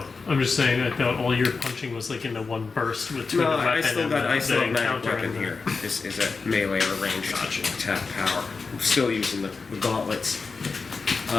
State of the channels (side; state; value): right; quieter; 4.5 dB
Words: I'm just saying. I thought all your punching was like in the one burst between No, the weapon I still and got the magic encounter weapon and the- here. This is a melee or ranged attack power. I'm still using the gauntlets.